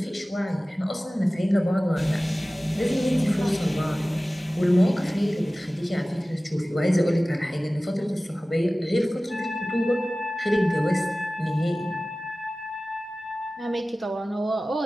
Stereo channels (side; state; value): both; normal; correlation 0.97